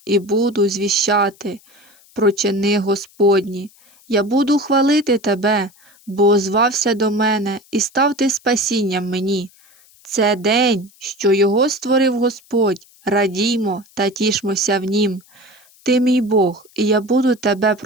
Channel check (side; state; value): left; noise; hiss, 29 dB below the sound